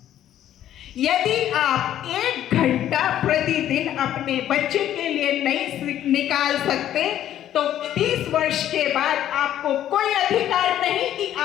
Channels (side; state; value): right; quieter; 11.6 dB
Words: यदि आप 1 घंटा प्रतिदिन अपने बच्चे के लिए नहीं निकाल सकते तो 30 वर्ष के बाद आपको कोई अधिकार नहीं कि